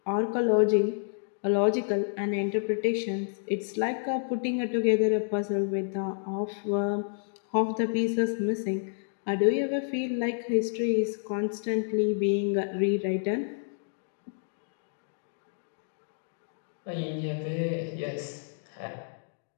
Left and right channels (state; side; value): silent; right; digital silence